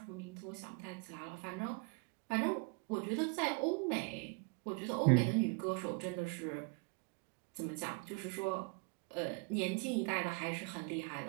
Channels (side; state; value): left; quieter; 35.1 dB